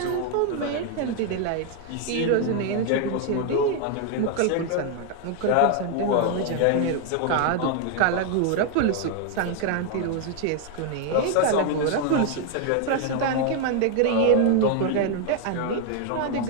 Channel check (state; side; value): different; both; correlation 0.00